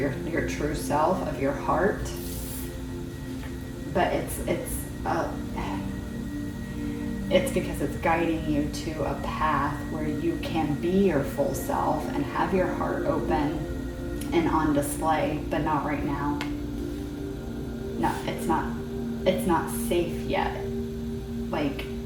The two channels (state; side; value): identical; both; correlation 1.00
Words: true self, of your heart. But it's because it's guiding you to a path where you can be your full self and have your heart open and on display, but not right now. No, it's not safe yet. Like,